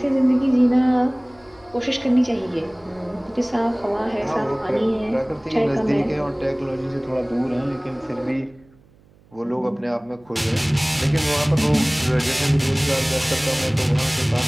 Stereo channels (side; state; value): right; noise; hum, 29 dB below the sound